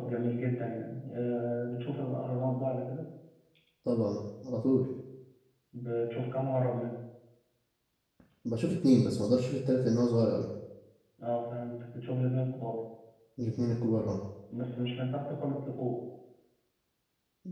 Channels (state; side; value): identical; both; correlation 1.00